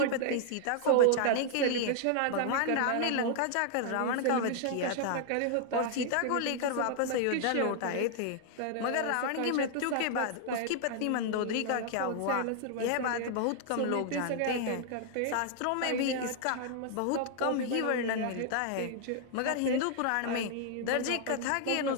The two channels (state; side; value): different; both; correlation 0.00